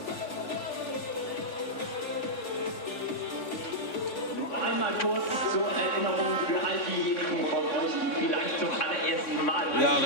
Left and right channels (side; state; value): right; late; 3.6 ms